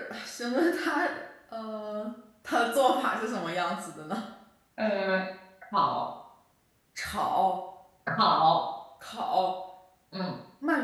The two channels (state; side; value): identical; both; correlation 1.00